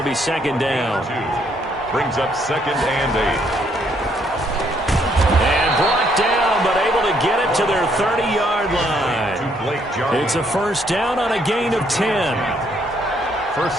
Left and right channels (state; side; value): normal; both; correlation 0.70